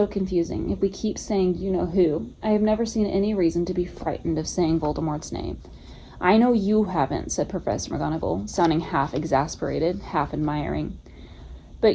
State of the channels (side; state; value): both; identical; correlation 1.00